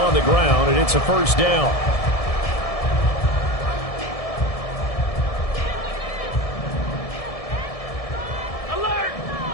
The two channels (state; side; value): late; right; 1.7 ms